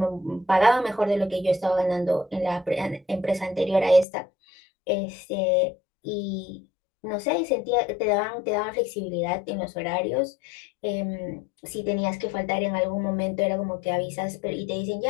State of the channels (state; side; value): drops out; right; at 4.0 s